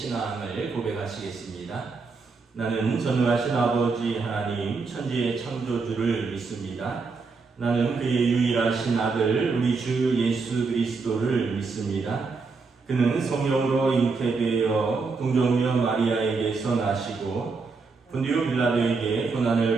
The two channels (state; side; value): quieter; left; 4.5 dB